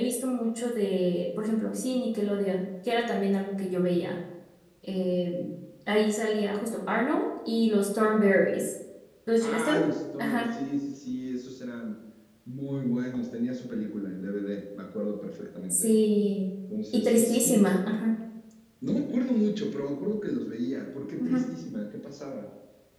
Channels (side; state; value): both; identical; correlation 1.00